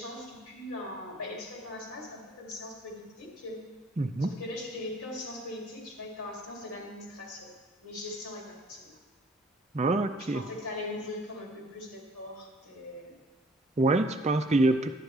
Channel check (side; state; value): both; normal; correlation 0.58